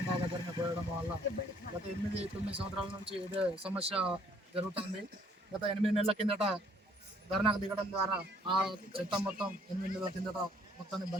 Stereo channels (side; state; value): both; normal; correlation 0.62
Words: దగ్గరనే పోయడం వల్ల గత 8-9 సంవత్సరాల నుంచి ఇదే సమస్య జరుగుతుంది. గత 8 నెలల కిందట ధర్నాకు దిగడం ద్వారా ఆ చెత్త మొత్తం 8 నెలల కిందట మొత్తాన్ని